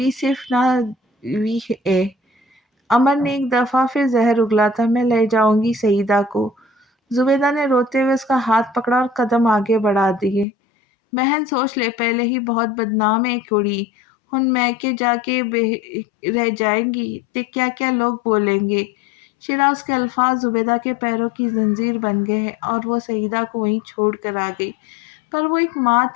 सिर्फ ना बीवी है। अमर ने एक दफ़ा फिर जहर उगला था। मैं ले जाऊंगी सईदा को। जुबेदा ने रोते हुए उसका हाथ पकड़ा और कदम आगे बढ़ा दिए। बहन सोच ले, पहले ही बहुत बदनाम है कुड़ी। हुन मैके जाके रह जाएंगी ते क्या क्या लोग बोलेंगे। शिराज के अल्फाज जुबेदा के पैरों की जंजीर बन गए हैं, और वो सईदा को वहीं छोड़ कर आ गई। पर वो एक माँ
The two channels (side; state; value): right; drops out; at 10.5 s